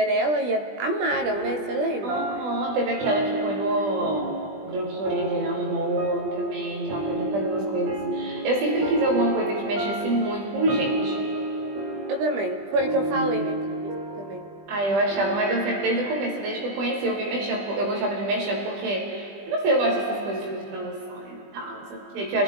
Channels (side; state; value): left; late; 20 ms